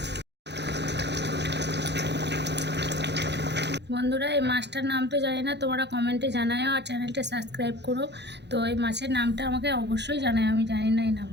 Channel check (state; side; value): late; left; 0.50 ms